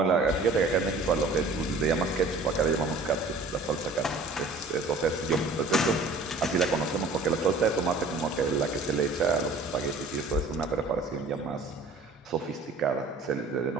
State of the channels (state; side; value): quieter; left; 3.3 dB